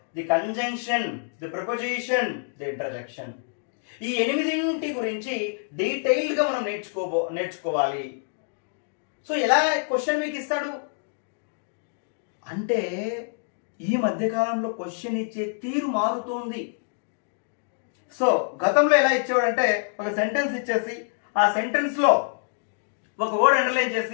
the conjunction, the preposition, the interjection. ఈ 8 గురించి డీటెయిల్డ్ గా మనం నేర్చుకోవాలి. సో ఎలా క్వశ్చన్ మీకు ఇస్తాడు అంటే, ఈ మధ్యకాలంలో క్వశ్చన్ ఇచ్చే తీరు మారుతోంది. సో గతంలో ఎలా ఇచ్చేవాడంటే, ఒక సెంటెన్స్ ఇచ్చేసి ఆ సెంటెన్స్ లో ఒక వర్డ్ అండర్లైన్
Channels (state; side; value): silent; right; digital silence